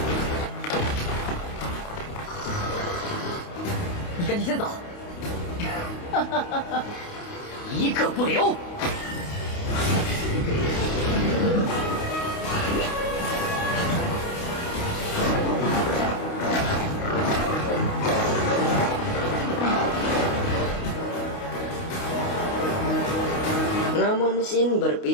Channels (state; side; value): late; right; 29 ms